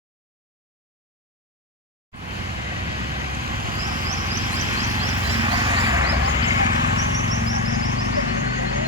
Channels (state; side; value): normal; both; correlation 0.09